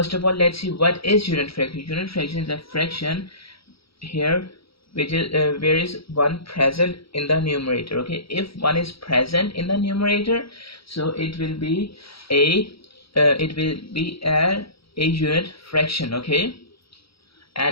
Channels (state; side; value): late; right; 0.75 ms